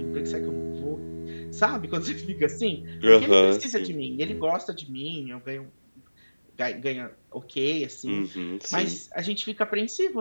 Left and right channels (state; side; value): inverted; both; correlation -1.00